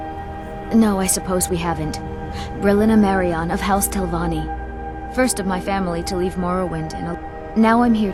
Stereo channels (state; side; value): identical; both; correlation 1.00